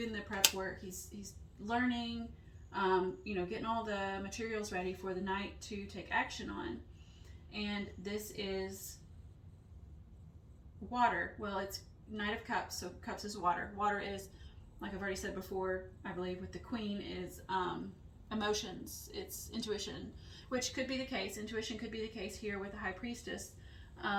the prep work, he's learning, getting all the materials ready for the Knight to take action on. And this is water. Well, it's Knight of Cups, so Cups is water. Water is, like I've already said before, I believe with the Queen, is emotions. It's intuition, which could be the case. Intuition could be the case here with the High Priestess.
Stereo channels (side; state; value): both; identical; correlation 1.00